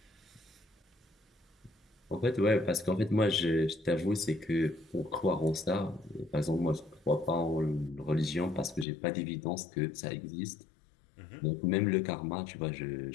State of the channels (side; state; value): right; drops out; at 8.8 s